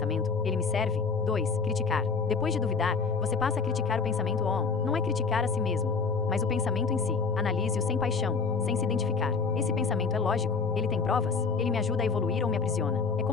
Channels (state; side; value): quieter; right; 4.9 dB